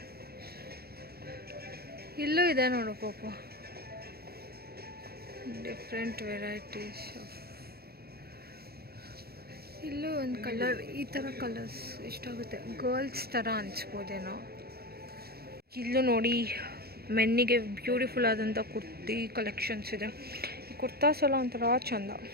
ಇಲ್ಲೂ ಇದೆ ನೋಡು ಪಾಪ, ಡಿಫ್ರೆಂಟ್ ವೆರೈಟೀಸ್ ಆಫ್. ಇಲ್ಲೂ ಒಂದು ಕಲರ್, ಈ ಥರ ಕಲರ್ಸ್ ಇಷ್ಟಾಗುತ್ತೆ. ಗರ್ಲ್ಸ್ ಥರ ಅನಿಸ್ಬೋದೇನೋ. ಇಲ್ಲೂ ನೋಡಿ ಮೆನ್ನಿಗೆ ಬ್ಯೂಟಿಫುಲ್ ಆದಂಥ ಕುರ್ತಿ ಕಲೆಕ್ಷನ್ಸ್ ಇದೆ. ಈ ಕುರ್ತಾಸ್ ಎಲ್ಲ ಒಂಥರ ಚಂದ.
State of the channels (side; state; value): left; late; 0.45 ms